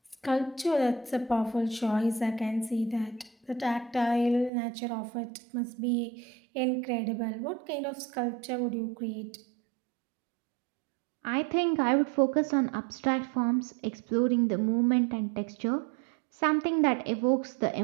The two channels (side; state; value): left; drops out; at 4.5 s